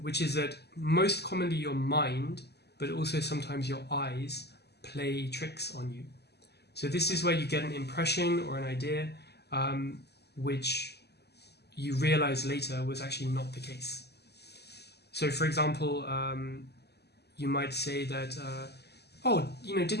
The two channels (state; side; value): late; right; 0.48 ms